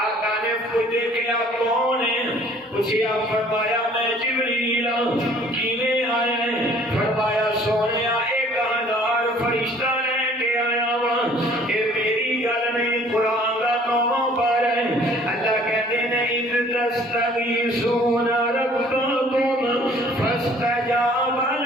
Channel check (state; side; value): normal; both; correlation 0.55